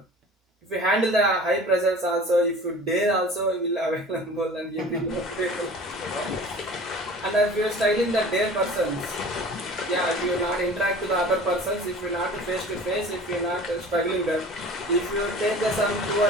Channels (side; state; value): both; normal; correlation 0.42